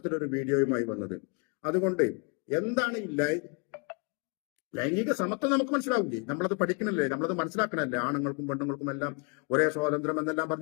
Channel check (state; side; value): quieter; right; 34.9 dB